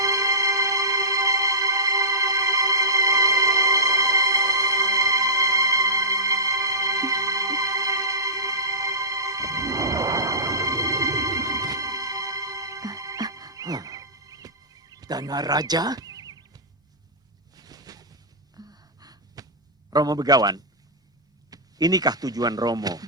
Dana Raja? Romo Begawan, inikah tujuan Romo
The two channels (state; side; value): normal; both; correlation -0.19